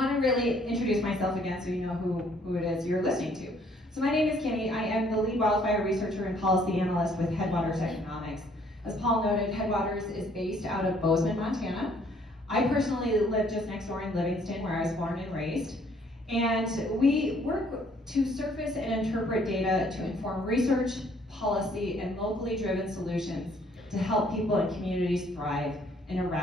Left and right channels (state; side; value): normal; both; correlation 0.63